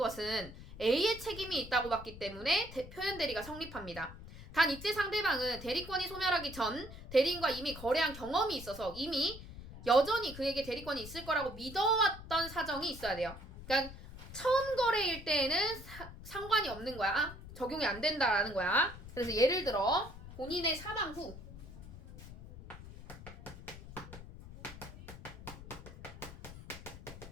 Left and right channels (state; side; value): noise; left; rumble, 14 dB below the sound